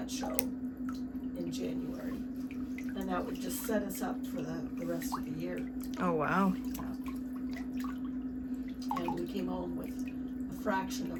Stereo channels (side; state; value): both; identical; correlation 1.00